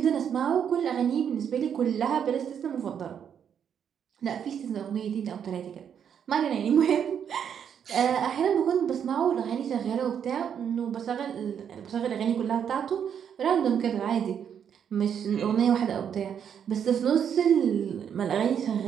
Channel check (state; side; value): quieter; left; 8.2 dB